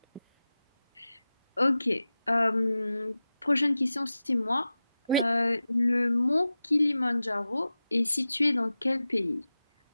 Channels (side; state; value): both; inverted; correlation -0.93